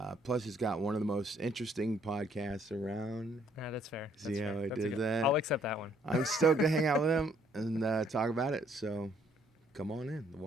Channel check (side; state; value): both; normal; correlation 0.65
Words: Plus, he's got one of the most interesting podcasts around. Yeah, that's fair. See how I did that? I'll accept that one. I'm stoked to hang out with him and talk about it, so come on in. The